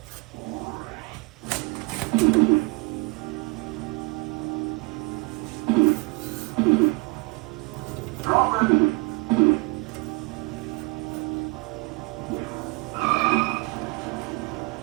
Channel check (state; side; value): quieter; left; 26.3 dB